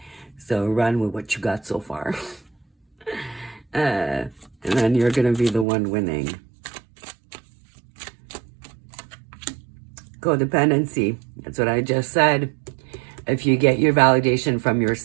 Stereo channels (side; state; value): left; drops out; at 5.7 s